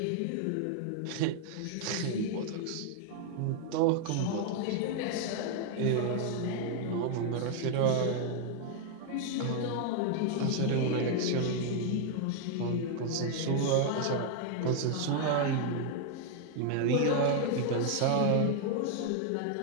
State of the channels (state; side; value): different; both; correlation 0.00